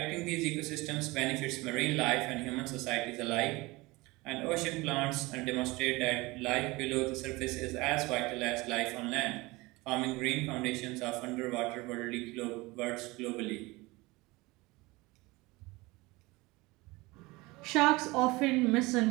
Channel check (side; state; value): left; quieter; 22.5 dB